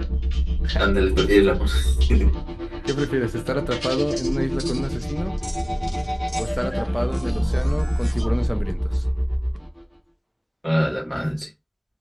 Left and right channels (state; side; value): identical; both; correlation 1.00